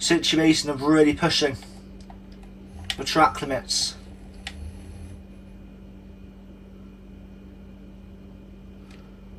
of really pushing the track limits.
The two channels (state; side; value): identical; both; correlation 1.00